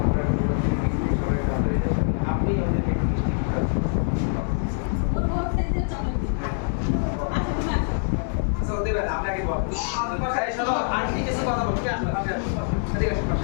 মুনাজির মিষ্টি সবাই হাততালি দেন। আপনি ওদেরকে একটু মিষ্টি খাওয়ান। আচ্ছা ওদের আপনাকে বল। এই শোনো আন্টি কিছু কথা বলবে। ঠিক আছে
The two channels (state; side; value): silent; right; digital silence